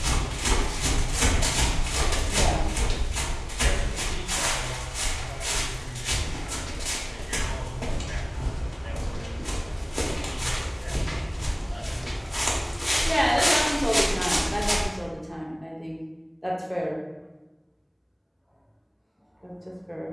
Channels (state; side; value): identical; both; correlation 1.00